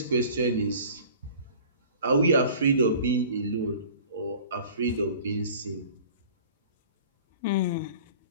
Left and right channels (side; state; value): both; inverted; correlation -0.45